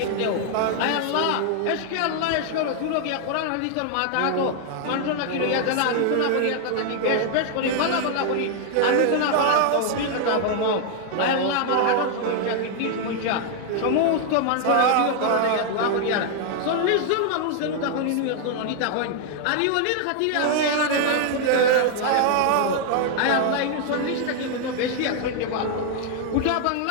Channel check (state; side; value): different; both; correlation 0.00